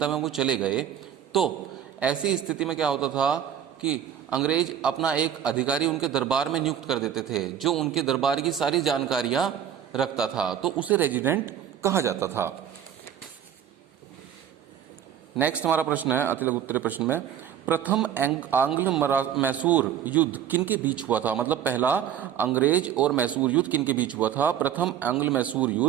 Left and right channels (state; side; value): quieter; left; 9.5 dB